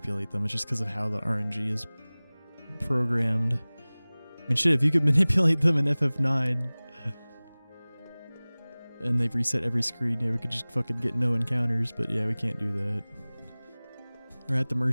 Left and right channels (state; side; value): inverted; both; correlation -1.00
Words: them. It's just because of how the RNG is programmed. I mean, shit, if you could manipulate them in FF9 and they've reset every screen, yeah, we could just fucking get no encounters, but yeah, we can't do that. We're at the